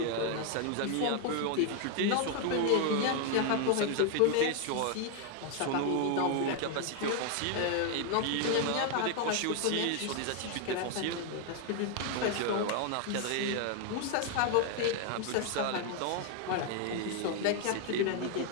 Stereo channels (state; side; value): different; both; correlation 0.00